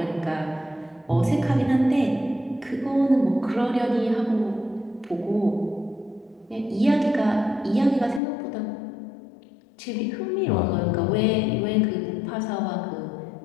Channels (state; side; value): drops out; right; at 8.2 s